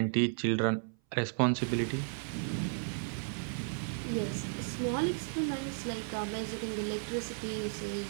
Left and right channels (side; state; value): left; silent; 55 dB below the other